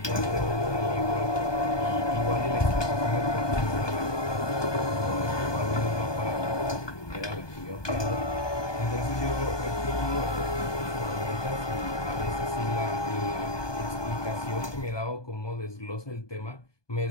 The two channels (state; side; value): late; right; 1.2 ms